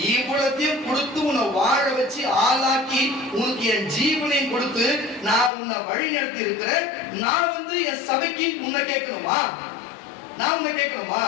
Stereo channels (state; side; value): drops out; right; at 5.5 s